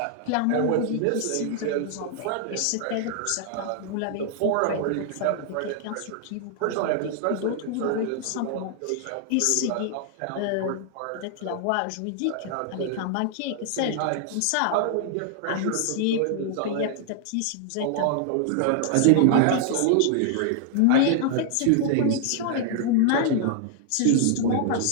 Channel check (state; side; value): different; both; correlation 0.00